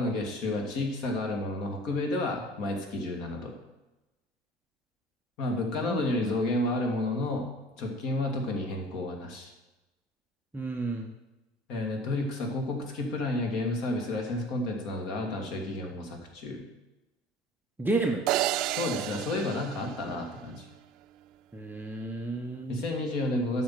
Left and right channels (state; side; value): normal; both; correlation 0.45